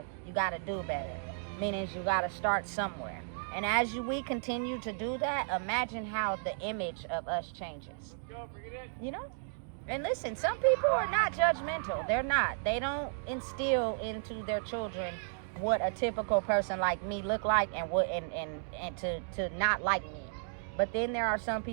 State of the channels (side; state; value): left; silent; digital silence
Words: you got to do better. Meaning, you got to start somewhere. And as we continue to do that, imagine how the image of us changes. You know? And listen, some people are not judgmental. They're not. They don't instill into their children what a typical person like me look like and what and to not like me. But then there are some